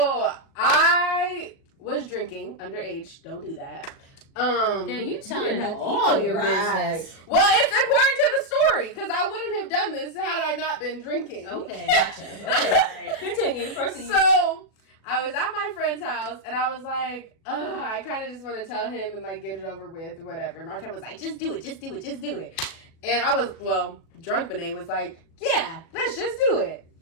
I was drinking underage. Don't do that. Then you telling have to all eat your right. business. Well, it's important to the story because I wouldn't have done this had I not been drinking. Okay. Gotcha. Okay. All right. Continue. Proceed. So I was at my friend's house and I was like, I kind of just want to tell him and like get it over with or whatever. My friend was like, just do it, just do it, just do it. And I was, drunk Benet was like, yeah, let's just do it.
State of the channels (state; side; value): late; right; 37 ms